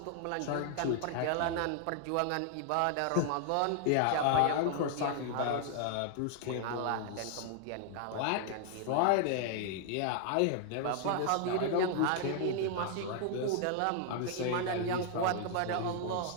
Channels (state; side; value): different; both; correlation 0.00